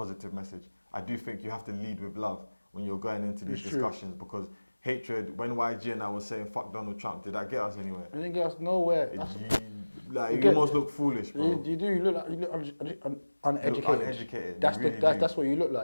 message. I do think you have to lead with love when you're going into these discussions because hatred, when YG and I was saying fuck Donald Trump, did that get us anywhere? It didn't get us nowhere. You almost look foolish, bro. You do. You look uneducated. Look uneducated. That's what you look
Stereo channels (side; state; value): both; inverted; correlation -1.00